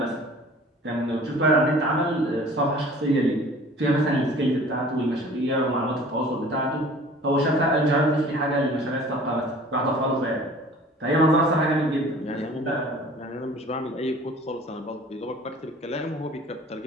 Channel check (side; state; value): both; normal; correlation 0.47